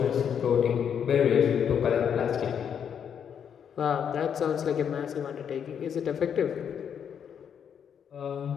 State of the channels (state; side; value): quieter; right; 8.0 dB